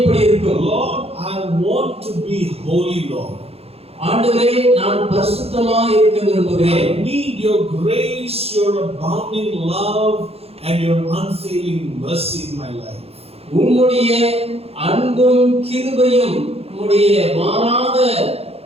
இருக்கும். Lord, I want to be holy, Lord. ஆண்டவரே, நான் பரிசுத்தமாய் இருக்க விரும்புகிறேன். I need your grace, your abounding love and your unfailing mercy in my life. உம்முடைய அன்பும் கிருபையும் உம்முடைய மாறாத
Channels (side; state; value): left; late; 0.29 ms